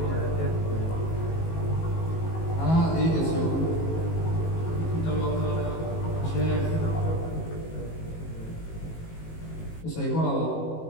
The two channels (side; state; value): right; late; 18 ms